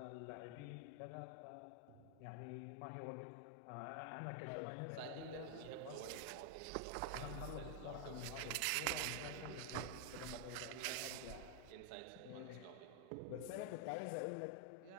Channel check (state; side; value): different; both; correlation 0.00